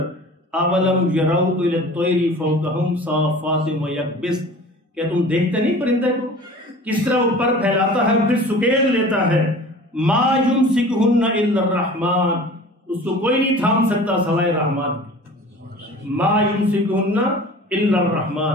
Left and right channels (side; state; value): both; normal; correlation 0.42